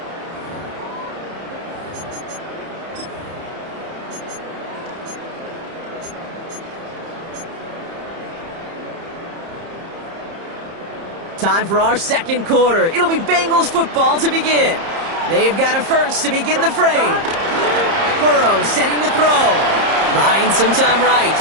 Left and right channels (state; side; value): late; left; 30 ms